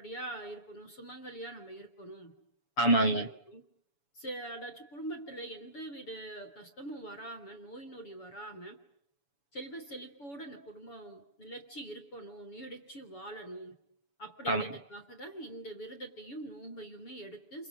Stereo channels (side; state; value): right; late; 7.0 ms